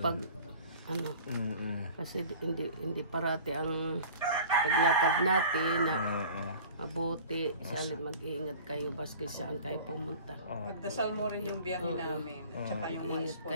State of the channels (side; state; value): both; inverted; correlation -0.42